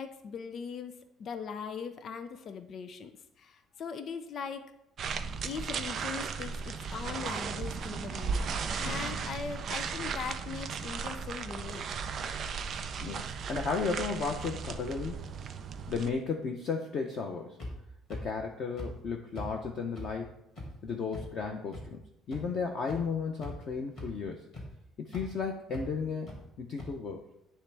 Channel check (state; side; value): normal; both; correlation 0.59